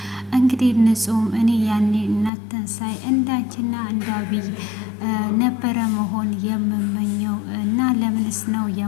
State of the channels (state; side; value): drops out; right; at 2.3 s